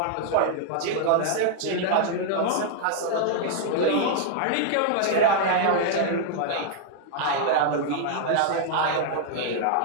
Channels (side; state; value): both; different; correlation 0.00